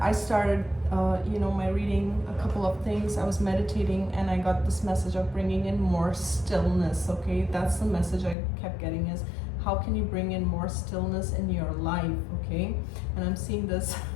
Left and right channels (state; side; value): drops out; right; at 8.3 s